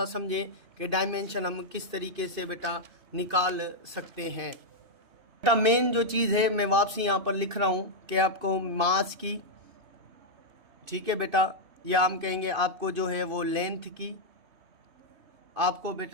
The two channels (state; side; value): late; left; 2.5 ms